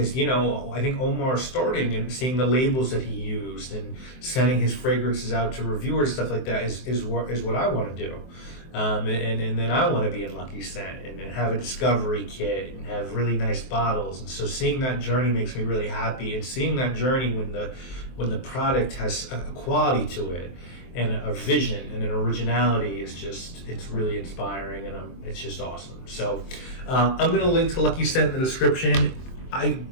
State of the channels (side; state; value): right; late; 23 ms